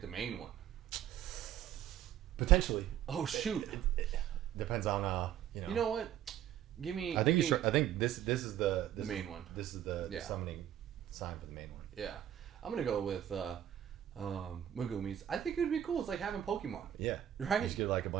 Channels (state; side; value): quieter; left; 11.1 dB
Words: the main one? Potentially. Oh shoot! It depends on You know what? Give me. I think this is the main one. This is the summoning sign for the main one. Yeah, I'm gonna go with Megumi's. I think it would be cool. It's like having Pokemon. Yeah, right. You just get like a